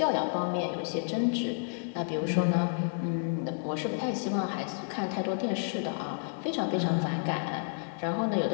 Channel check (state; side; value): silent; right; digital silence